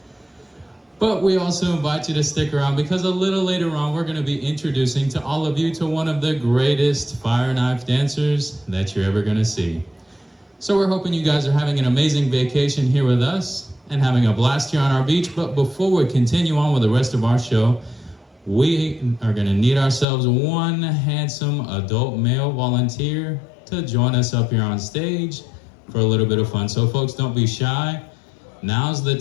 But we also invite you to stick around, because a little later on we're gonna be introducing to all of you to one of the greatest fire knife dancers that you're ever gonna see. So we're hoping you guys are having an amazing vacation here with us and having a blast here on our beach. But before we continue on with the rest of our show, we are gonna need ourselves one handsome adult male volunteer to join us up here on stage for a little bit of fun. So folks, don't be shy. Now's the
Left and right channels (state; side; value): drops out; right; at 20.1 s